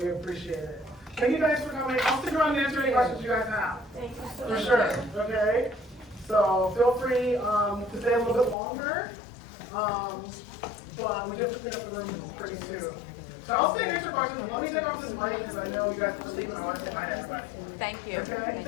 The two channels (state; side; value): drops out; right; at 8.6 s